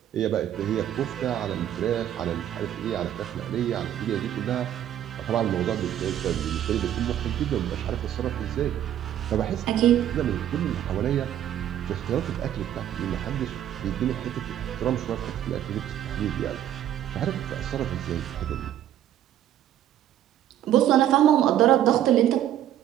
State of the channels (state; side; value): quieter; left; 11.3 dB